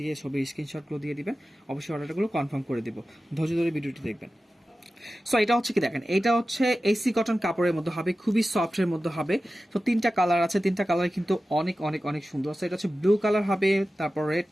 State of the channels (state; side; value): normal; both; correlation 0.94